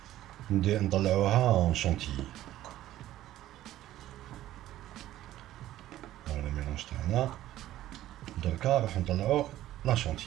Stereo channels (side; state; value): left; quieter; 14.0 dB